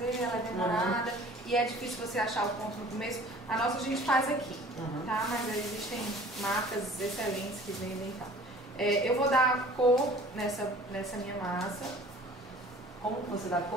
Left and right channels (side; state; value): both; normal; correlation 0.48